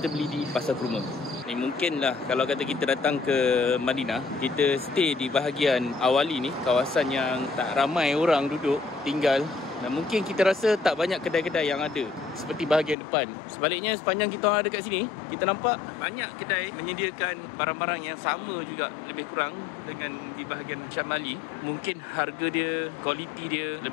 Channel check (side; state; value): right; drops out; at 13.0 s